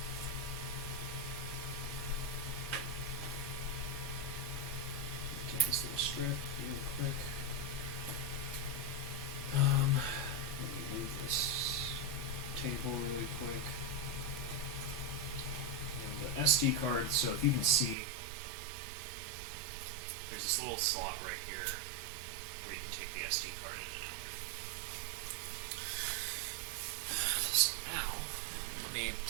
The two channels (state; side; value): drops out; left; at 17.9 s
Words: Get this little strip really quick. Let me move this table really quick. And the SD card, so if you can see, there's this little slot right here where you can take the SD card in and out. So now, let me